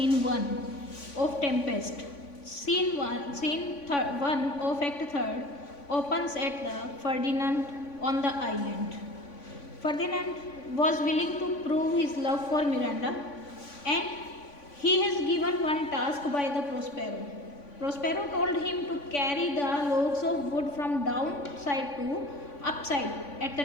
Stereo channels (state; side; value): late; right; 3.5 ms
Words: 1 of Tempest. Scene 1 of Act 3rd opens at the Ferdinand on the island. Ferdinand was willing to prove his love for Miranda, and he is given one task by the Prospero. Prospero told him to carry the logs of wood from downside to upside at the